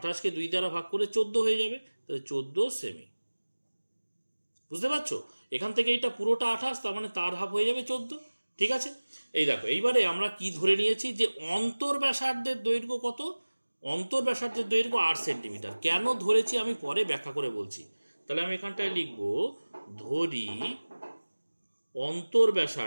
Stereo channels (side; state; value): both; inverted; correlation -1.00